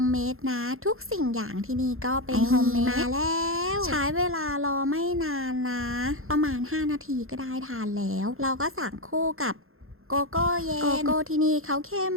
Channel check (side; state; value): left; late; 0.61 ms